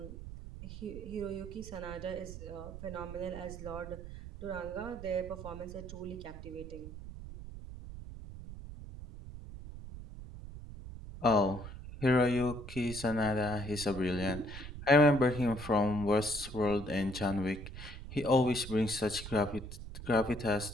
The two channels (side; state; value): right; noise; rumble, 11 dB below the sound